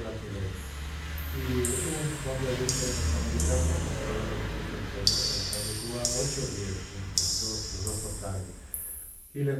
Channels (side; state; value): both; identical; correlation 1.00